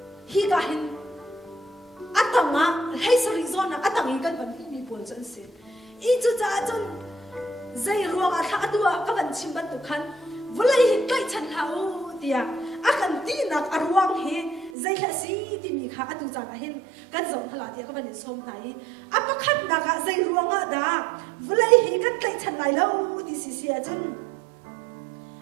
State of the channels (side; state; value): left; drops out; at 14.7 s